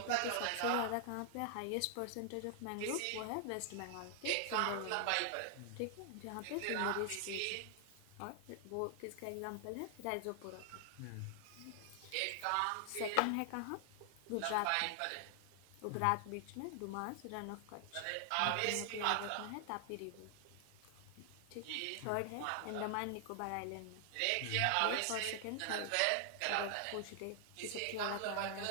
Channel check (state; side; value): different; both; correlation 0.00